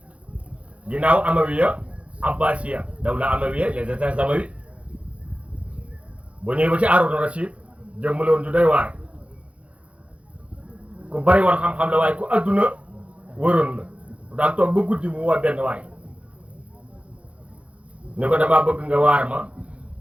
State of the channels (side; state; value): left; late; 0.063 ms